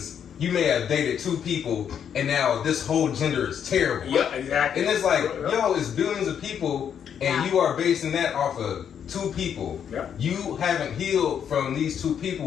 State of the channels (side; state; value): right; quieter; 8.3 dB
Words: You may have dated two people, and now this whole gender is terrible. Yeah, exactly. And it's like, yo, it's billions of people, and you are basing that off of two people. Yeah. You haven't healed from these two